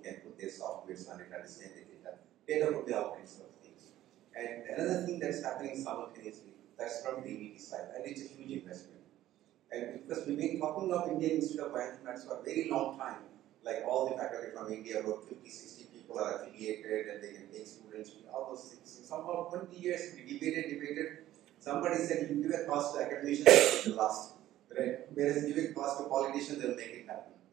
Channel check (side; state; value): left; quieter; 13.8 dB